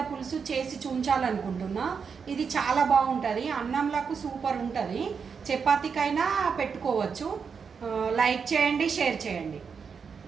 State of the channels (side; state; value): left; quieter; 6.0 dB